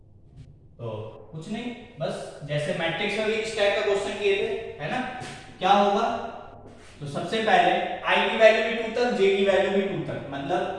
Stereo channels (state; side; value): identical; both; correlation 1.00